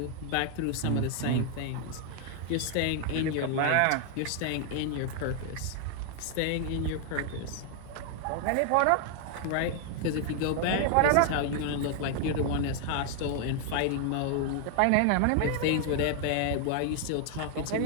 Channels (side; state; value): both; different; correlation 0.00